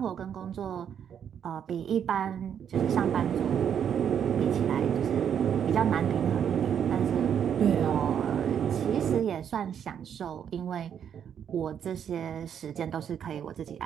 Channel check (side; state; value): left; quieter; 8.5 dB